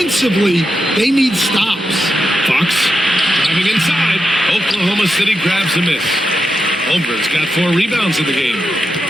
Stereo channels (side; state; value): both; normal; correlation 0.87